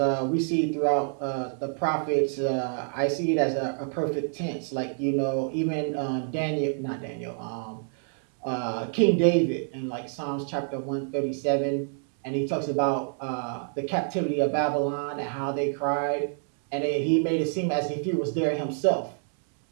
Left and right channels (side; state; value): left; silent; 58 dB below the other